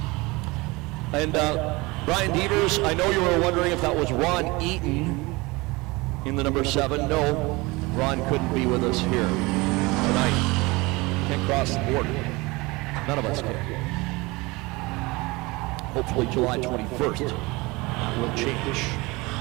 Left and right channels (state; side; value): quieter; left; 23.5 dB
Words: And Brian Devers, I know you were wondering if that was Ron Eaton in the number 7. No, Ron couldn't be with us here tonight. Can't cross the border. None of us can. Hopefully July 21st. That will change.